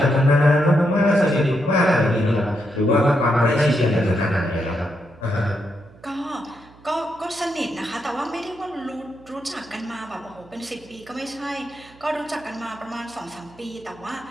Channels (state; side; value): noise; right; hum, 24 dB below the sound